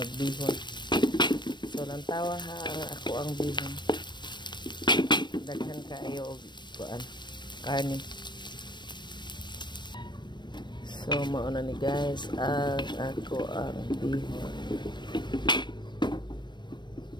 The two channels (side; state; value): right; late; 0.22 ms